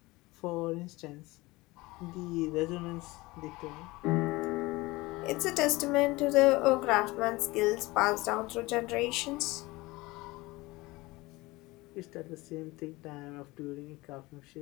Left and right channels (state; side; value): quieter; right; 21.5 dB